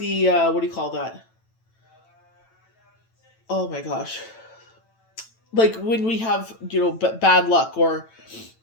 do you call that? Oh my gosh. Like when we have, bad luck or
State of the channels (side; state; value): right; late; 9.0 ms